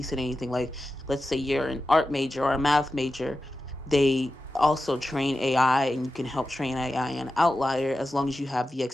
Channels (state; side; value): normal; both; correlation 0.92